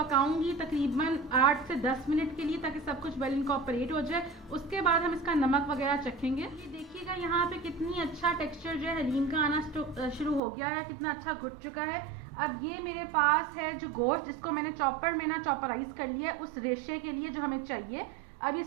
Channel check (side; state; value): left; drops out; at 10.4 s